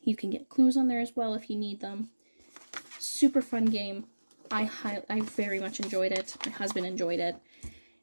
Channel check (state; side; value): inverted; both; correlation -1.00